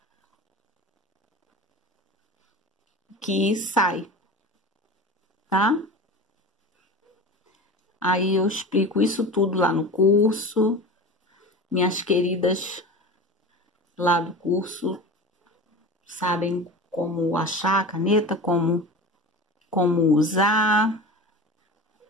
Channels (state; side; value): normal; both; correlation 0.32